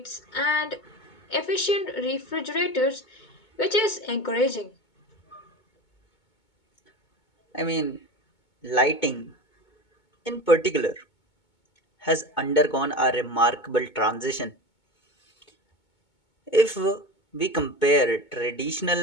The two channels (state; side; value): late; right; 2.2 ms